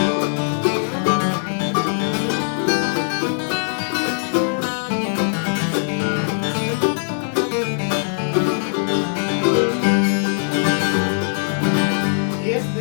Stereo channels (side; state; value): right; silent; 65 dB below the other